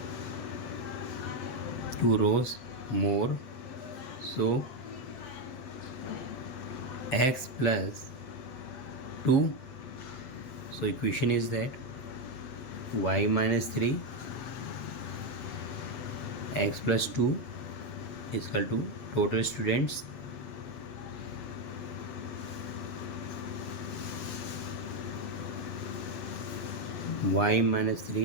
Two rows more. So x plus 2. So equation is that y minus 3 x plus 2 is equal to total students y minus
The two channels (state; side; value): late; right; 7.9 ms